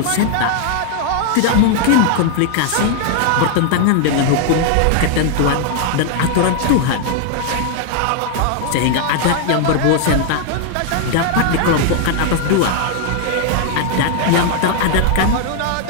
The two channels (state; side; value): different; both; correlation 0.00